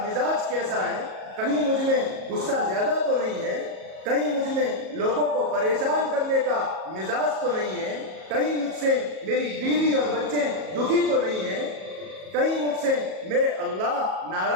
مزاج کیسا ہے، کہیں مجھ میں غصہ زیادہ تو نہیں ہے، کہیں مجھ میں لوگوں کو پریشان کرنے کا مزاج تو نہیں ہے، کہیں مجھ سے میری بیوی اور بچے دکھی تو نہیں ہیں، کہیں مجھ سے میرے اللہ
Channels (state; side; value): late; left; 37 ms